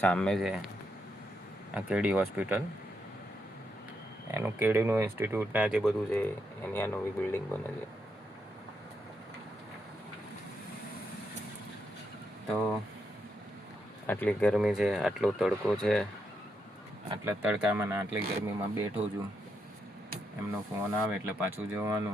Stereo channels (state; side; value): normal; both; correlation 0.81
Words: સામે છે આ કેડી હોસ્પિટલ. એનું કેડીનું ઇન્સ્ટિટ્યૂટના જે બધું છે એની આ નવી બિલ્ડિંગ બને છે. તો આટલી ગરમી છે, આટલો તડકો છે, આટલા તડકામાં ને આટલી ગરમીમાં બેઠો છું. એમનો ફોન આવે એટલે પાછું